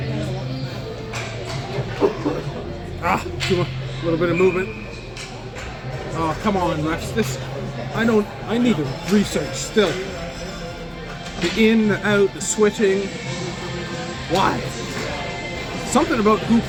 A little bit of movement. Oh, come on, refs. I need to research still. The in, the out, the switching. Why? Something about who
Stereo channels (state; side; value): identical; both; correlation 1.00